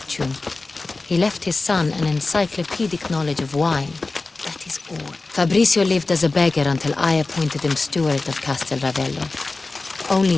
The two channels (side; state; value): right; quieter; 3.5 dB